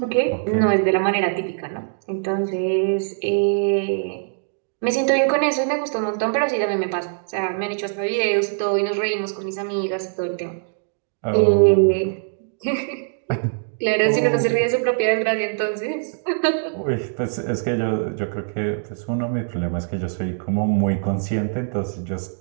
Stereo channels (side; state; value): left; silent; digital silence